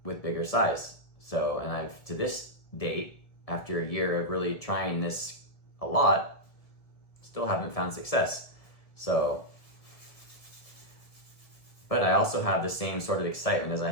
with bigger size. So, and I've, to this date, after a year of really trying this a lot, still haven't found success. So, but I also have the same sort of excitement as I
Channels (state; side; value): late; right; 1.7 ms